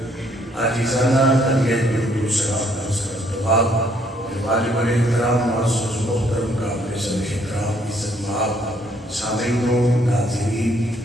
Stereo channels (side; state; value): both; normal; correlation 0.67